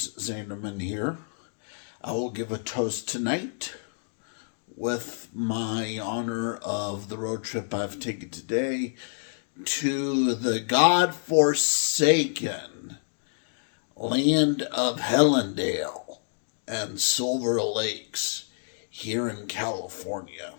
Zanderman here. I will give a toast tonight with my honor of the road trip I've taken today to the God-forsaken land of Helendale and Silver Lakes here in California.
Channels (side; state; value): right; silent; digital silence